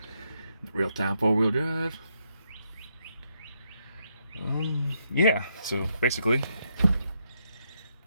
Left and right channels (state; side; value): inverted; both; correlation -0.78